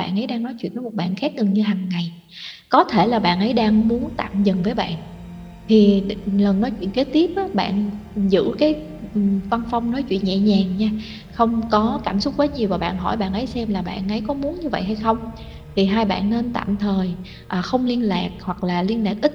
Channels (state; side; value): identical; both; correlation 1.00